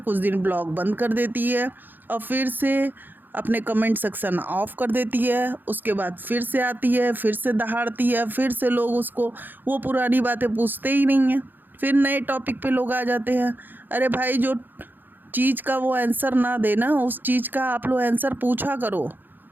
दिन ब्लॉग बंद कर देती है और फिर से अपने कमेंट सेक्शन ऑफ कर देती है। उसके बाद फिर से आती है, फिर से दहाड़ती है, फिर से लोग उसको वो पुरानी बातें पूछते ही नहीं हैं, फिर नए टॉपिक पे लोग आ जाते हैं। अरे भाई, जो चीज़ का वो आंसर ना देना, उस चीज़ का आप लोग आंसर पूछा करो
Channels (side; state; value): left; late; 0.090 ms